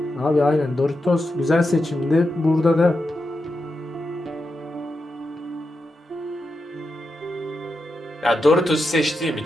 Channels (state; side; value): normal; both; correlation 0.87